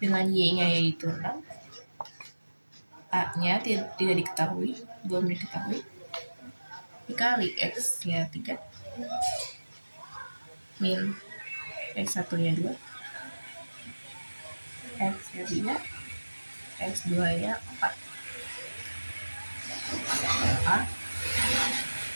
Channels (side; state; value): both; inverted; correlation -1.00